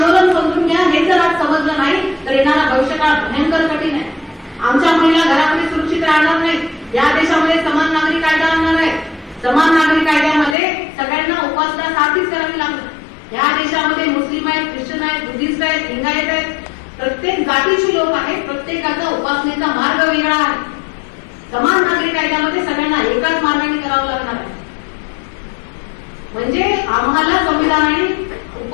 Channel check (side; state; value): right; drops out; at 10.6 s